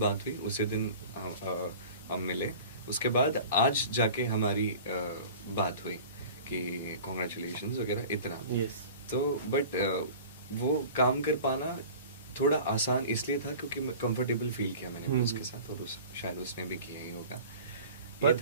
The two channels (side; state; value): both; inverted; correlation -0.41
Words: हुई, उसी दिन हम मिले। उसके बाद आज जाके हमारी बात हुई कि कॉन्ग्रेचुलेशंस वगैरह इतना। Yes. तो बट वो काम कर पाना थोड़ा आसान इसलिए था क्योंकि मैं कंफर्टेबल फील किया मैंने उसके साथ, और शायद उसने भी किया ही होगा। But